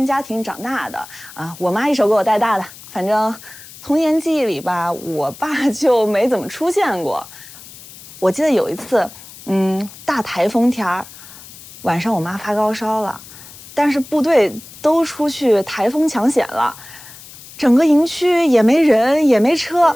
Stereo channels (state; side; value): noise; left; hiss, 18 dB below the sound